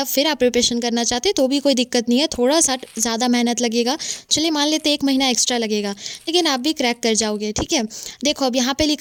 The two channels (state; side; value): identical; both; correlation 1.00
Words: फिर आप प्रिपरेशन करना चाहते हैं तो भी कोई दिक्कत नहीं है, थोड़ा सा ज़्यादा मेहनत लगेगा, चलिए मान लेते हैं 1 महीना एक्स्ट्रा लगेगा, लेकिन आप भी क्रैक कर जाओगे। ठीक है, देखो अब यहाँ पे